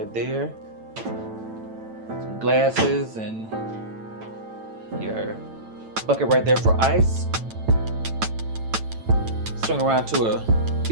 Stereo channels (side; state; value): left; late; 9.0 ms